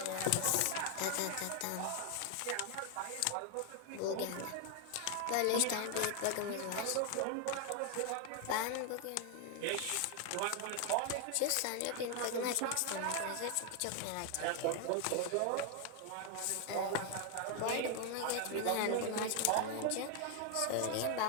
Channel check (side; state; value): both; different; correlation 0.00